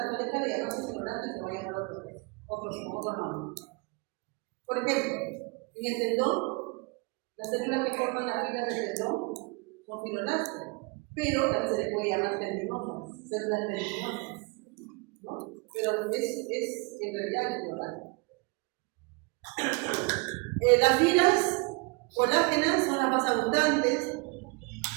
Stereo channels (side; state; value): left; quieter; 28.5 dB